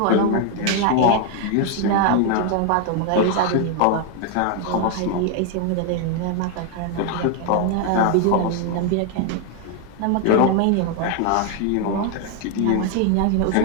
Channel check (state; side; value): different; both; correlation 0.00